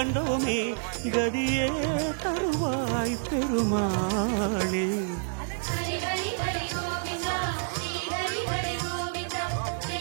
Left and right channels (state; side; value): silent; left; digital silence